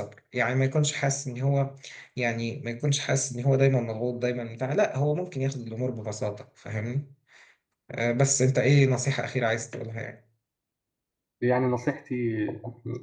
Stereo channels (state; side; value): identical; both; correlation 1.00